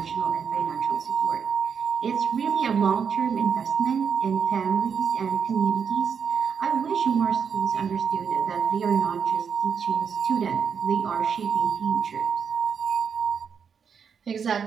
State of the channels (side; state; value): left; quieter; 6.8 dB